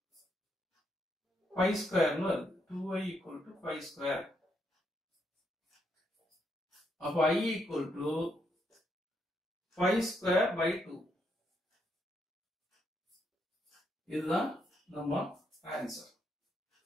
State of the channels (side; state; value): both; normal; correlation 0.77